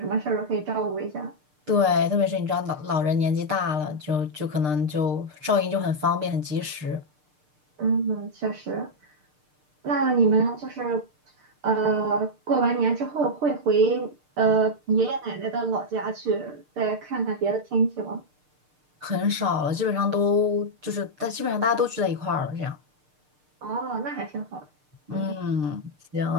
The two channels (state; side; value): late; left; 6.6 ms